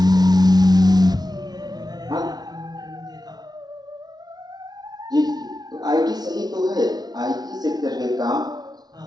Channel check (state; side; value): late; left; 0.19 ms